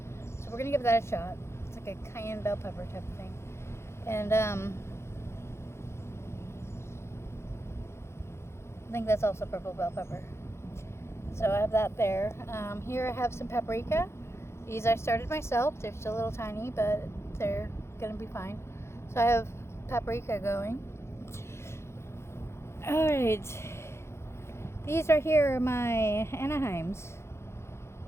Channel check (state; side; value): late; right; 0.13 ms